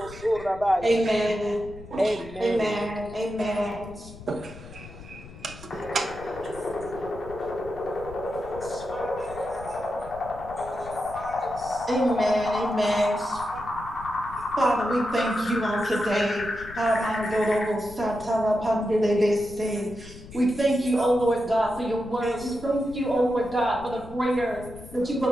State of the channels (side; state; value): left; noise; rumble, 16 dB below the sound